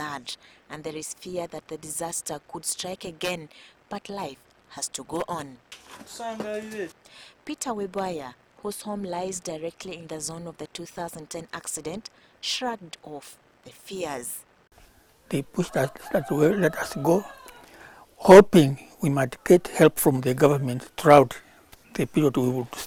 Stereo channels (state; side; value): identical; both; correlation 1.00